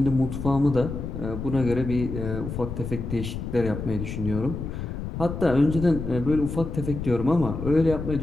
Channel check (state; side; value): noise; left; rumble, 6 dB below the sound